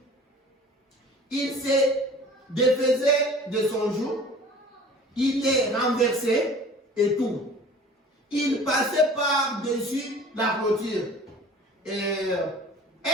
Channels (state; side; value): normal; both; correlation 0.45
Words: Il se défaisait de son joug, il est renversé et tout. Il passait par-dessus la clôture. Et